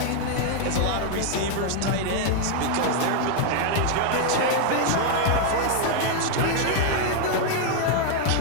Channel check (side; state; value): both; different; correlation 0.00